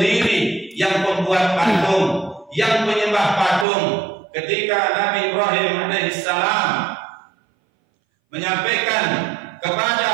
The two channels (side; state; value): left; drops out; at 3.7 s